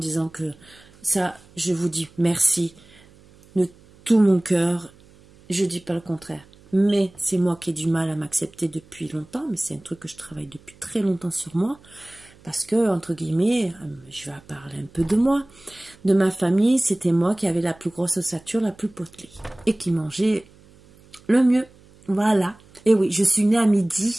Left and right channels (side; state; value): right; noise; hum, 26 dB below the sound